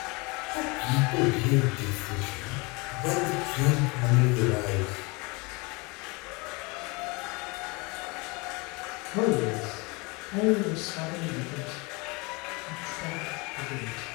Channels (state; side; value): quieter; right; 27.6 dB